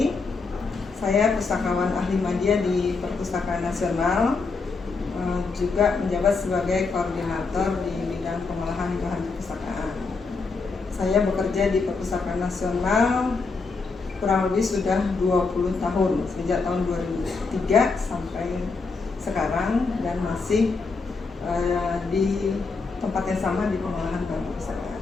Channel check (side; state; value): right; quieter; 4.3 dB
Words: Saya pustakawan ahli media di Perpustakaan Nasional, juga menjabat sebagai koordinator di bidang pengolahan bahan perpustakaan. Saya bekerja di Perpustakaan Nasional kurang lebih sudah 20 tahun, sejak tahun 2003 sampai sekarang, dan masih di tempat yang sama di pengolahan bahan perpustakaan.